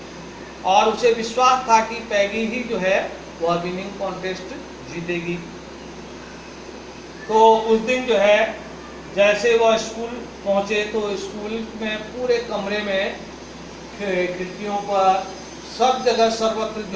और उसे विश्वास था कि पैगी ही जो है वह विनिंग कॉन्टेस्ट जीतेगी। तो उस दिन जो है जैसे वह स्कूल पहुंचे तो स्कूल में पूरे कमरे में खिड़कियों पर सब जगह सर्वत्र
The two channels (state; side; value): identical; both; correlation 1.00